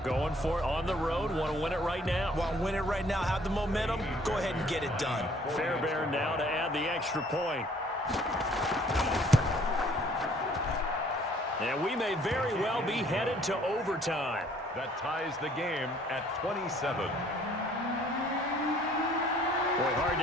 for it on the road. Want to win it right now. Want to win it right now, have the momentum, go ahead and get it done. Fairbairn now to add the extra point. And we may very well be headed to overtime. That ties the game at 27. Boy, hard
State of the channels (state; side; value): normal; both; correlation 0.59